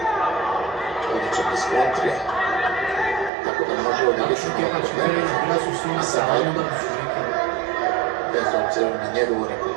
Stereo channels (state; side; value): drops out; left; at 3.3 s